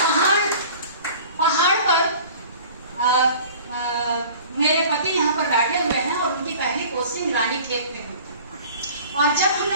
पहाड़ पर मेरे पति यहाँ पर बैठे हुए हैं और उनकी पहली पोस्टिंग रानीखेत में हुई। और जब हम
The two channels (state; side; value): inverted; both; correlation -0.45